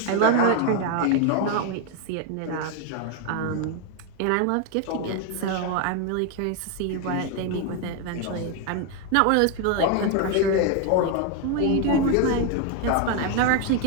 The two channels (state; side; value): different; both; correlation 0.01